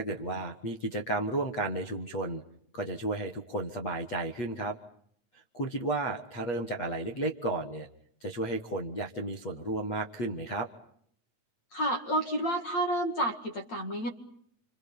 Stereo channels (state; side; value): late; right; 8.4 ms